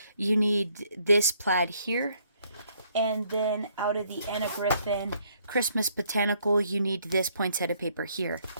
you need this plaid here. And then out of the Anna Griffin Christmas Botanical, you need this poinsettia paper here.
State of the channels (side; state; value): both; inverted; correlation -0.67